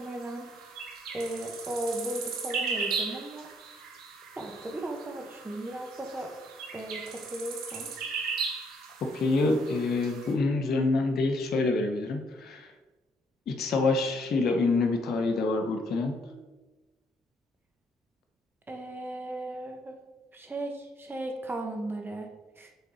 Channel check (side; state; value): both; normal; correlation 0.69